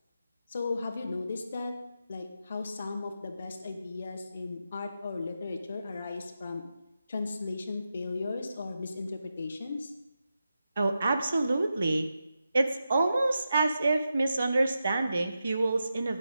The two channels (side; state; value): both; inverted; correlation -0.89